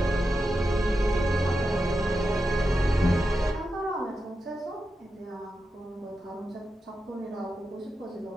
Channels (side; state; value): both; normal; correlation 0.89